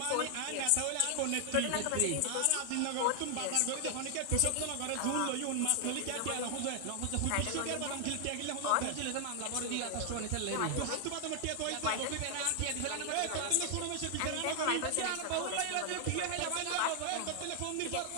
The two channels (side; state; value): both; different; correlation 0.00